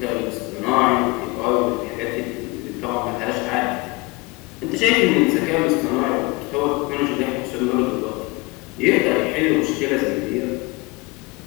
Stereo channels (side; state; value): right; quieter; 25.5 dB